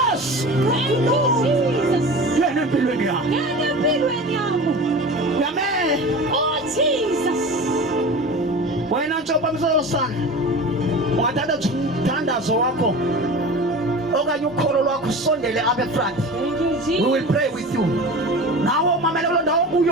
Thank you, Jesus. yena empilweni yami. Ngena empilweni yami. Amen. Oh, Jesus. Wena ntshopa msosana, ungathatha umthandazo wakho okanye ukholo lwakho usondele apha efront. Thank you, We Jesus. will pray with you. Nawe umamele kule ndawo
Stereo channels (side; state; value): both; normal; correlation 0.34